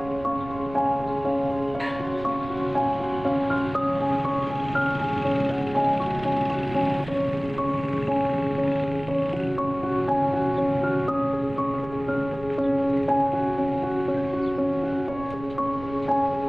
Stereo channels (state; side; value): noise; right; rumble, 16 dB below the sound